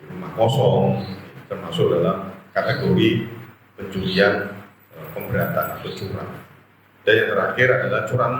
rumah kosong, termasuk dalam kategori pencurian pemberatan atau curang. Dan yang terakhir adalah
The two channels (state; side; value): identical; both; correlation 1.00